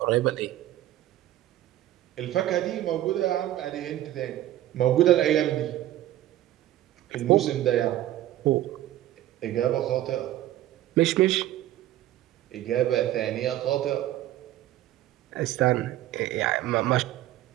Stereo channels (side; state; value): left; quieter; 13.8 dB